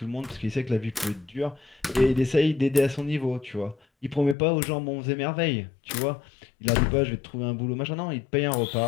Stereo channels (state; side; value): drops out; right; at 4.4 s